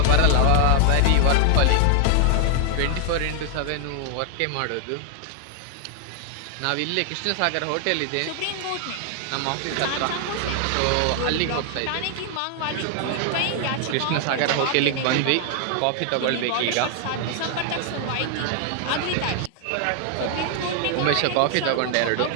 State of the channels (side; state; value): both; different; correlation 0.00